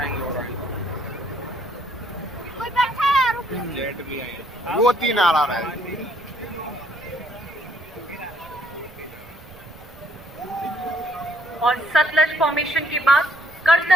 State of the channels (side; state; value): right; noise; rumble, 22 dB below the sound